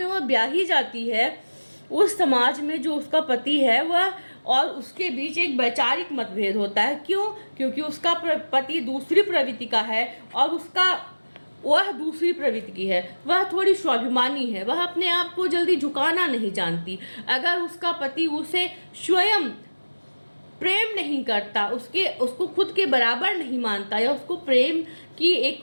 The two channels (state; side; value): inverted; both; correlation -1.00